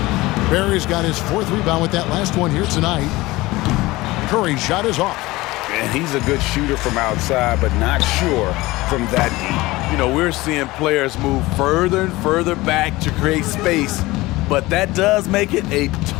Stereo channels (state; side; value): quieter; right; 19.9 dB